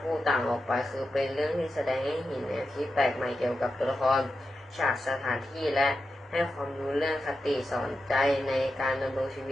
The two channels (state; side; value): normal; both; correlation 0.89